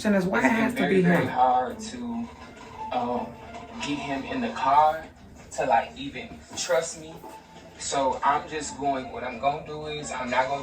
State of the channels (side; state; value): both; identical; correlation 1.00